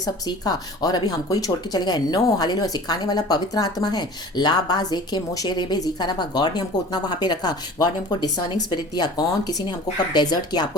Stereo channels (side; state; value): both; normal; correlation 0.42